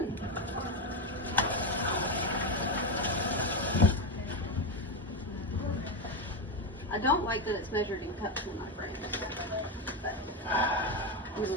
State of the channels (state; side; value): normal; both; correlation 0.11